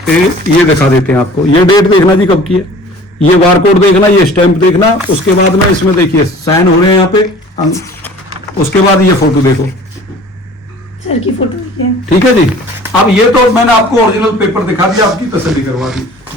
ये दिखा देते हैं आपको, ये डेट देखना जी कब की है, ये बारकोड देखना, ये स्टैंप देखना। उसके बाद में इसमें देखिए साइन हो रहे हैं यहाँ पे। उसके बाद ये फोटो देखो, सर की फोटो देखिए, ठीक है जी। अब ये तो मैंने आपको ओरिजिनल पेपर दिखा दिया, आपकी तसल्ली करवा दी।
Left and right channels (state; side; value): normal; both; correlation 0.47